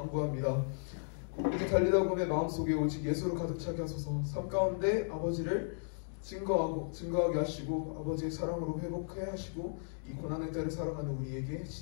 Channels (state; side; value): silent; right; digital silence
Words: 이제 달리다 보면 마음속에 오직 예수로 가득 차게 하소서. 삶 가운데 아버지를 증거하게 하시고 아버지의 사랑으로 회복해 하시고 이 고난의 때를 살아가는 우리에게